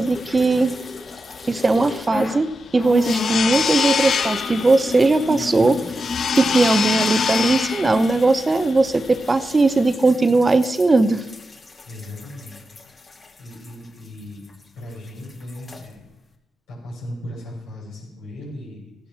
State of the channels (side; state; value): both; normal; correlation 0.90